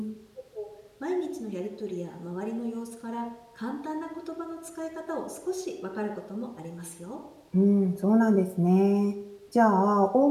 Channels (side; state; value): both; identical; correlation 1.00